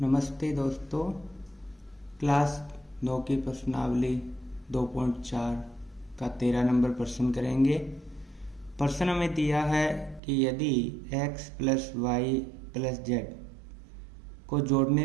दोस्तों, क्लास 9 की प्रश्नावली 2.4 का 13 नंबर प्रश्न करेंगे। प्रश्न हमें दिया है कि यदि x plus y plus z को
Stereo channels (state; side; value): drops out; left; at 10.2 s